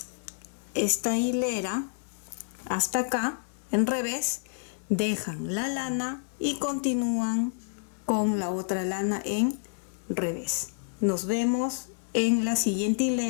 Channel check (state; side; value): silent; right; digital silence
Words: esta hilera hasta acá en revés, dejan la lana y continúan con la otra lana en revés. Nos vemos en la siguiente